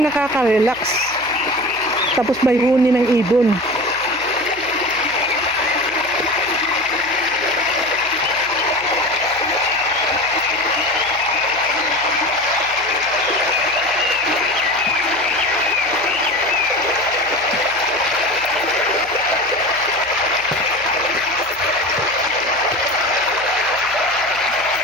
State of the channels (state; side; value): noise; right; hum, 22 dB below the sound